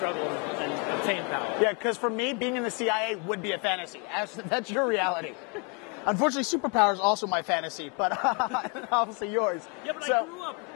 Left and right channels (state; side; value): quieter; right; 34.4 dB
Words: and obtain power. Yeah, because for me, being in the CIA would be a fantasy. That's your reality. Unfortunately, superpower is also my fantasy, but obviously yours. Yeah, but I grew up,